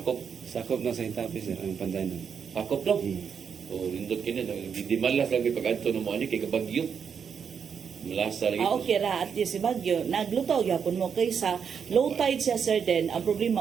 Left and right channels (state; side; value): quieter; left; 6.9 dB